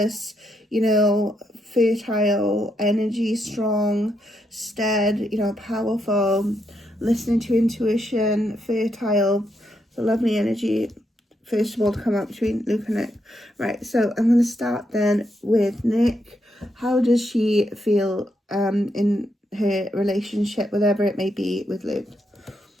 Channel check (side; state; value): both; normal; correlation 0.80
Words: you know, fertile energy, strong, steady, you know, powerful, listening to intuition, fertile, the lovely energy. First of all, to come up between Luke and Nic. Right, so I'm going to start then with Nic. How does she feel in her relationship, whatever it may be, with Luke